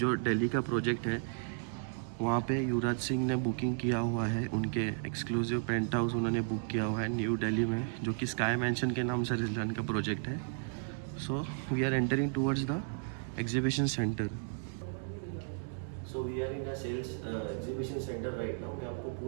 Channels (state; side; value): silent; left; digital silence